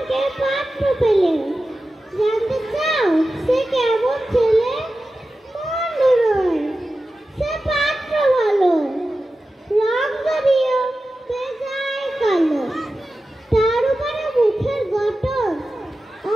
ভাগ্যের পাত্র পেলে। জানতে চাও সে কেমন ছেলে? মন্দ নয়, সে পাত্র ভালো, রং যদিও বেজায় কালো। তার উপরে মুখের গঠন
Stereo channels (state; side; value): normal; both; correlation 0.93